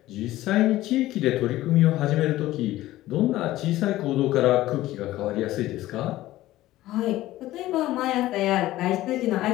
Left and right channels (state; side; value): quieter; right; 15.8 dB